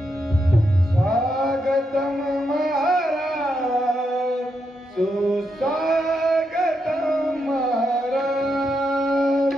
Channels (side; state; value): both; normal; correlation 0.82